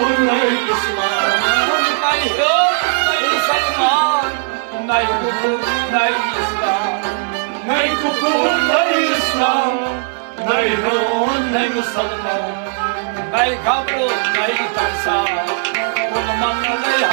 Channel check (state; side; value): silent; left; digital silence